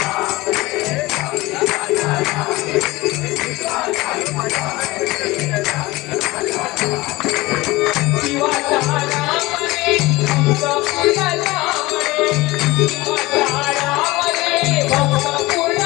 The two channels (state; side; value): quieter; right; 20.4 dB